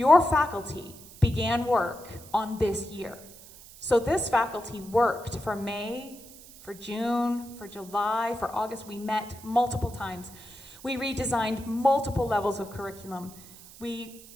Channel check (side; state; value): right; noise; hiss, 19 dB below the sound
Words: faculty began work on this year. So this faculty worked for May, for June, for July, for August. We met multiple times. We redesigned multiple levels of curriculum. We